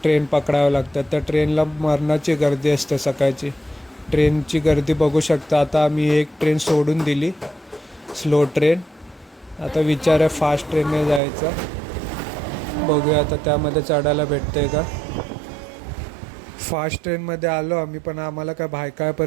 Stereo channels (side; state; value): left; drops out; at 11.2 s